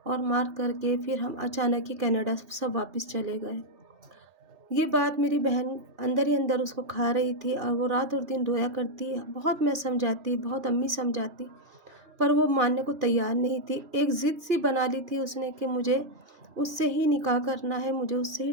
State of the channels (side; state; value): left; late; 2.4 ms